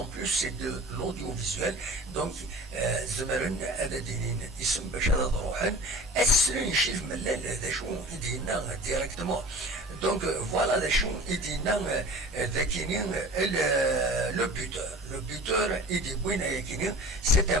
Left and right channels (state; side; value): normal; both; correlation 0.41